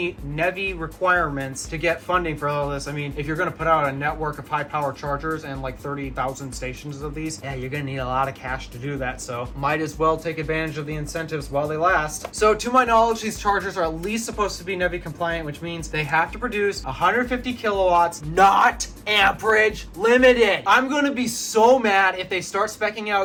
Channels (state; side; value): identical; both; correlation 1.00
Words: NEVI requirements to get funding for all this. I mean, if you're going to put out a network of high power chargers and like 30,000 stations of these, yeah, you're going to need a lot of cash to do that, so might as well take advantage of the incentives while they last. So to my knowledge, these chargers are at least supposed to be NEVI compliant, which means they have to produce 150 kilowatts, not amperage limited. I'm going to be so mad if they start speccing